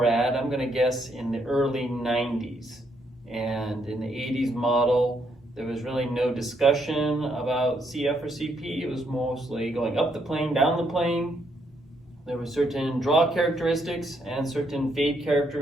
I'm going to guess in the early 90s. And in the 80s model, there was really no discussion about CF or CP. It was mostly going up the plane, down the plane. There were certain draw characteristics and certain fade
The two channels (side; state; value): both; normal; correlation 0.74